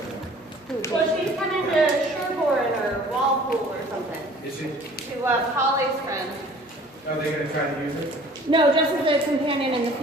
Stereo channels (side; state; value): both; normal; correlation 0.50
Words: Well, she's went into Sherborne or Walpole or something. Is she? To Polly's friend. Are they going to try to use it? No, just as a companion in the